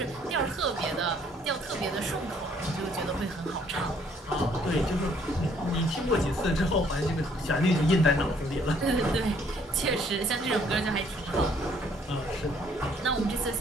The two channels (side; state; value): both; normal; correlation 0.63